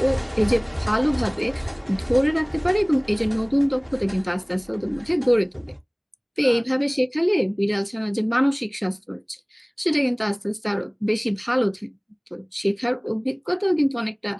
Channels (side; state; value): both; identical; correlation 1.00